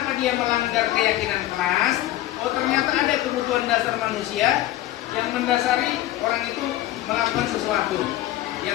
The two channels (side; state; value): right; quieter; 14.9 dB